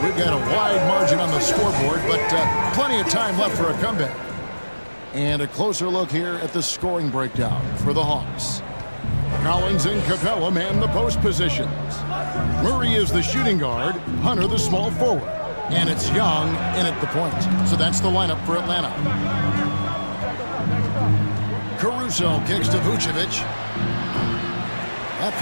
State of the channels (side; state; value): both; inverted; correlation -1.00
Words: we've got a wide margin on the scoreboard, but plenty of time left for a comeback. And a closer look here at the scoring breakdown for the Hawks. Collins and Capella man the post positions. Murray is the shooting guard, Hunter the small forward. And it's Young in at the point. So that's the lineup for Atlanta. Caruso kicks to Vucevic. That